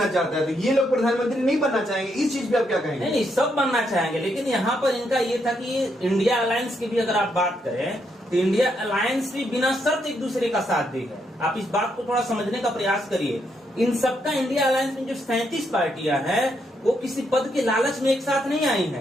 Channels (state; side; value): normal; both; correlation 0.77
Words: चाहता है? तो ये लोग प्रधानमंत्री नहीं बनना चाहेंगे। इस चीज पे आप क्या कहेंगे? नहीं, सब बनना चाहेंगे, लेकिन यहाँ पर इनका ये था कि इंडिया अलायंस की भी अगर आप बात करें तो इंडिया अलायंस भी बिना शर्त एक दूसरे का साथ दी है। आप इस बात को थोड़ा समझने का प्रयास करिए। इन सबका इंडिया अलायंस में जो 37 पार्टियां हैं वो किसी पद के लालच में एक साथ नहीं आई